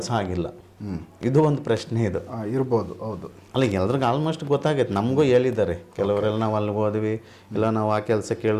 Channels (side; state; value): both; identical; correlation 1.00